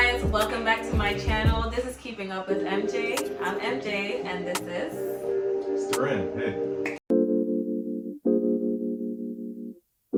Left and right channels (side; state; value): both; identical; correlation 1.00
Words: welcome back to my channel. This is Keeping Up with MJ. I'm MJ and this is... Ren. Hey.